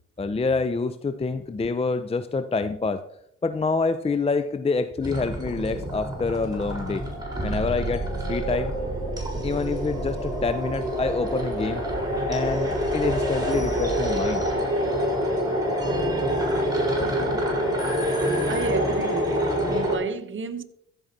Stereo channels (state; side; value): normal; both; correlation 0.47